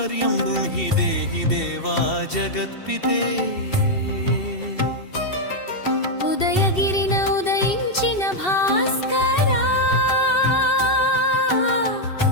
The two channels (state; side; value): late; right; 2.7 ms